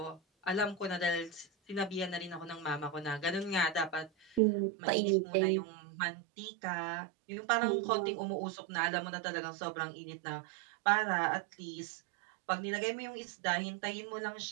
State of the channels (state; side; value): drops out; left; at 4.4 s